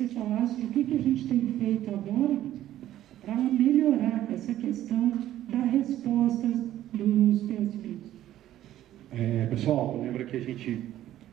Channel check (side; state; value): left; quieter; 13.0 dB